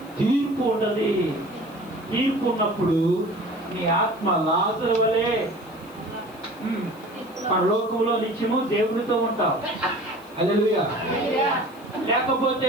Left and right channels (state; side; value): noise; left; hiss, 26 dB below the sound